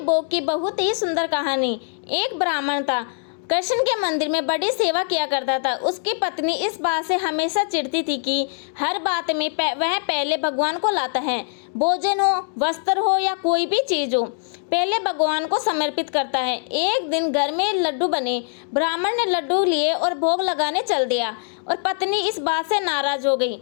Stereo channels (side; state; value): right; silent; 64 dB below the other